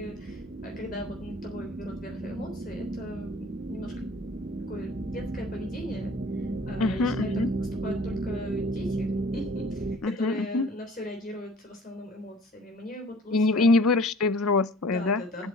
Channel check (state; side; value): normal; both; correlation 0.49